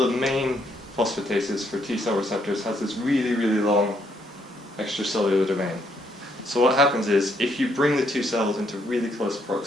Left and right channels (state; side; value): normal; both; correlation 0.72